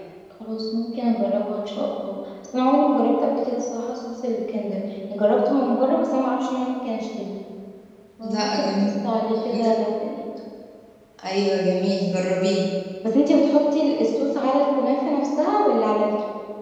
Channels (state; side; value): identical; both; correlation 1.00